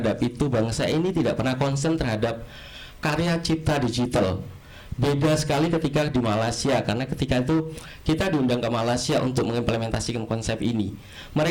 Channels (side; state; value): both; identical; correlation 1.00